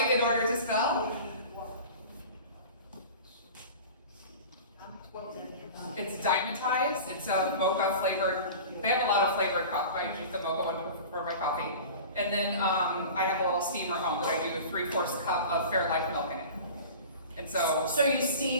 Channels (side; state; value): both; inverted; correlation -0.37